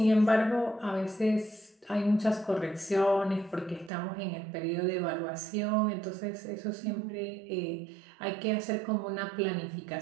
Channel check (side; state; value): left; drops out; at 3.9 s